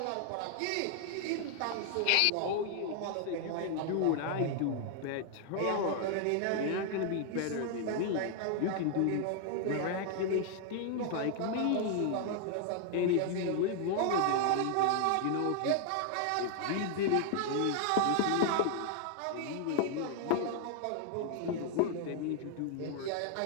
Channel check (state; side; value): different; both; correlation 0.00